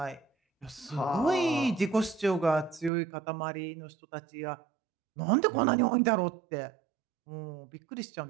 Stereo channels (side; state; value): left; drops out; at 2.9 s